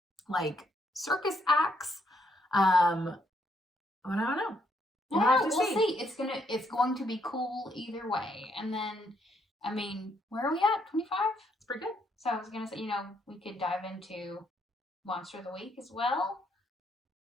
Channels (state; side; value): normal; both; correlation 0.73